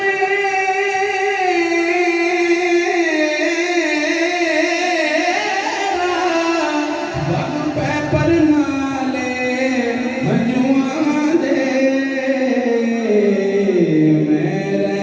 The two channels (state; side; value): identical; both; correlation 1.00